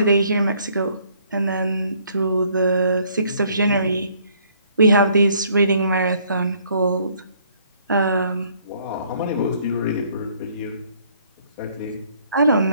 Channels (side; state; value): both; inverted; correlation -0.64